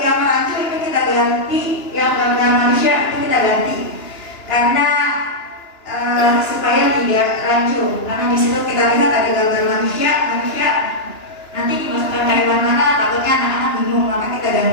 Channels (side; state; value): right; late; 2.9 ms